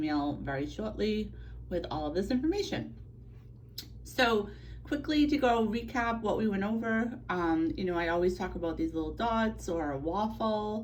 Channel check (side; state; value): both; identical; correlation 1.00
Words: very shortly with all of this information. So, quickly to go recap what we went over, I always talk about these little dots or a